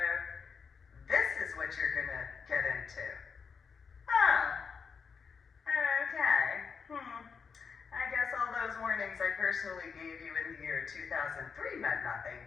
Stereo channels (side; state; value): right; quieter; 5.8 dB